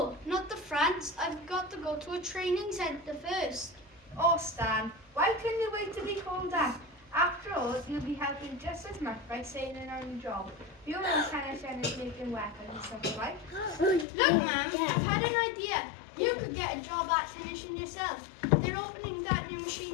not to France. I've got to go to a training centre first. Oh, Stan, why couldn't you wait to be called that? After all, you'll be helping just as much by sailing on the job. You know Stanishan is making weapons and stuff, right? Look, Mum, I've had an idea. You could get a job at Stanishan yourself. They're opening that new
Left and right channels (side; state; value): right; drops out; at 14.1 s